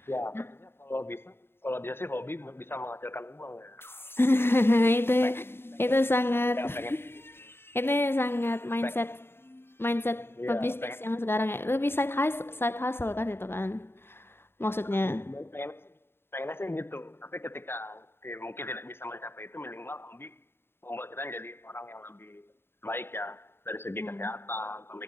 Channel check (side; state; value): right; late; 0.11 ms